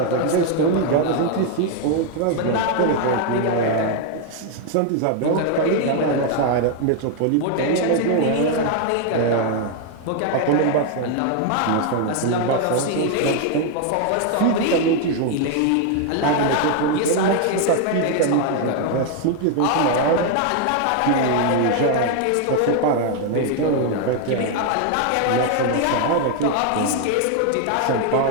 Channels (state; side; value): different; both; correlation 0.00